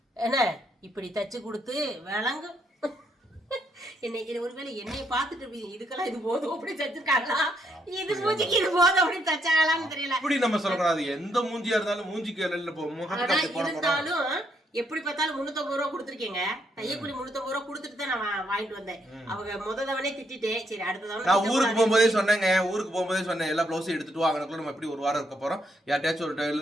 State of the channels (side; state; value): both; normal; correlation 0.75